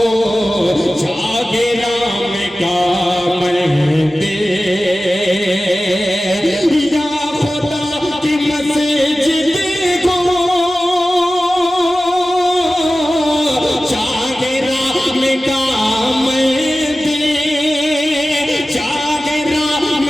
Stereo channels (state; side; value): normal; both; correlation 0.95